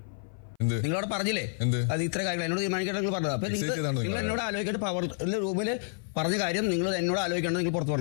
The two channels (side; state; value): right; silent; 55 dB below the other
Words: നിങ്ങളോട് പറഞ്ഞില്ലേ അത് ഇത്ര കാര്യങ്ങൾ എന്നോട് തീരുമാനിക്കേണ്ട നിങ്ങൾ പറഞ്ഞത്. അപ്പൊ നിങ്ങൾ എന്നോട് ആലോചിക്കേണ്ട പവർ റൂമിൽ പറഞ്ഞ കാര്യം നിങ്ങൾ എന്നോട് ആലോചിക്കേണ്ടത് നിങ്ങൾ പുറത്ത്